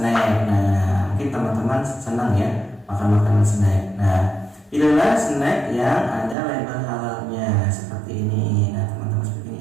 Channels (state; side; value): drops out; left; at 6.4 s